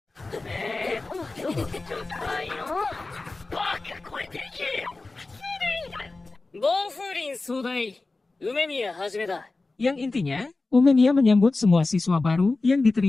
Yang intinya, Umemiya menyambut semua siswa baru yang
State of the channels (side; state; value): right; quieter; 3.4 dB